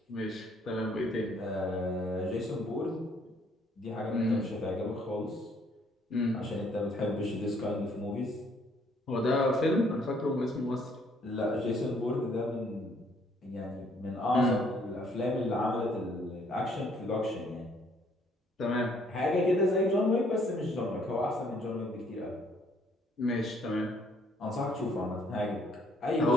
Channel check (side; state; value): both; normal; correlation 0.65